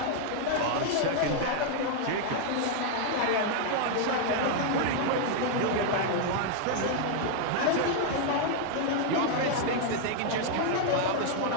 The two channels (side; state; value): both; different; correlation 0.00